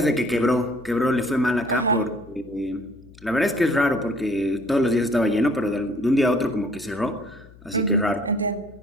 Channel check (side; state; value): left; noise; hum, 23 dB below the sound